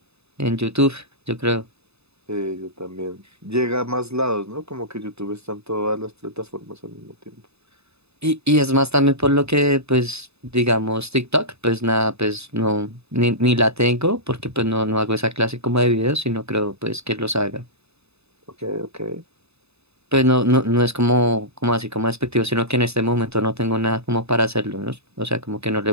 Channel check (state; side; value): late; left; 0.79 ms